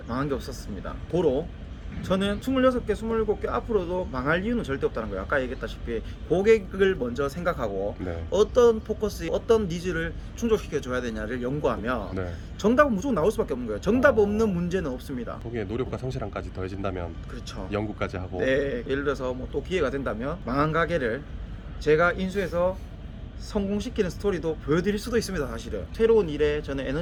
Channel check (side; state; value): both; identical; correlation 1.00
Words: 망한 게 없었습니다. 도로 저는 26개, 27개 앞으로도 망할 이유는 절대 없다는 거예요. 아까 얘기했다시피 고객을 먼저 생각하고 네. 어떤 포커스, 어떤 니즈를 충족시켜 줘야 되냐를 연구하면 네. 정답은 무조건 나올 수밖에 없는 거예요. 정답 없는 문제는 없습니다. 거기에 노력과 성실함까지 더해진다면 그렇죠. 연구까지 하고 네, 예를 들어서 뭐 또 기회가 된다면 망한 가게를 제가 인수해서 성공시키는 스토리도 보여드릴 수도 있습니다. 사실은 새로운 일에 저는